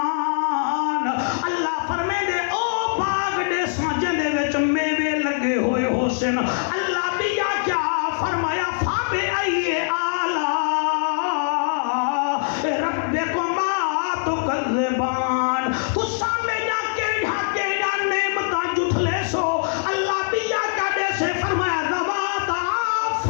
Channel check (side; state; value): right; silent; 64 dB below the other